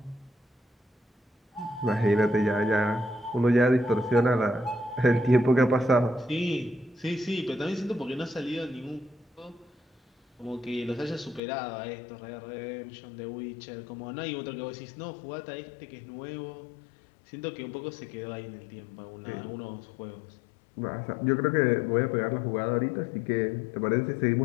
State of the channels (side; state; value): right; drops out; at 11.4 s